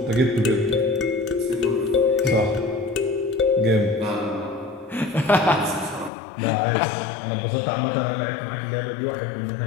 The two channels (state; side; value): drops out; right; at 6.1 s